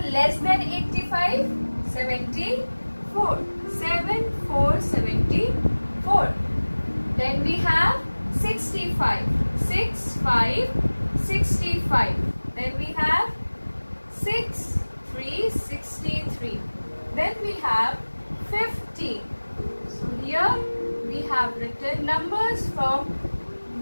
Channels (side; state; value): both; inverted; correlation -1.00